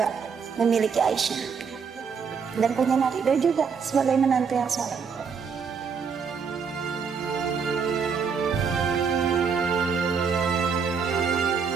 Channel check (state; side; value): quieter; left; 6.0 dB